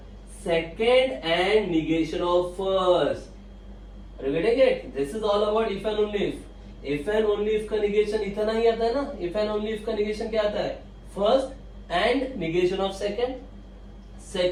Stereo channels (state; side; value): identical; both; correlation 1.00